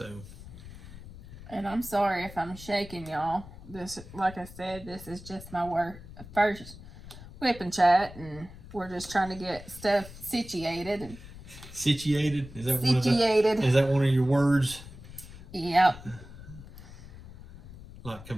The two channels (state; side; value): noise; left; rumble, 16 dB below the sound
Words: and I'm sorry if I'm shaking y'all. This, like I said, this is just my first Wip and Chat, and we're just trying to get stuff situated. And situated? Is that one of your words? Yep. Like